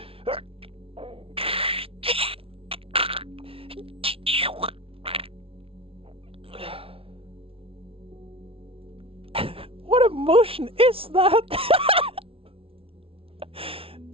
What emotion is that?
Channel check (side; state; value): left; late; 0.26 ms